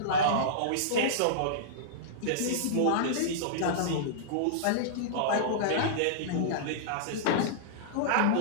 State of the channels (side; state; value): both; different; correlation -0.03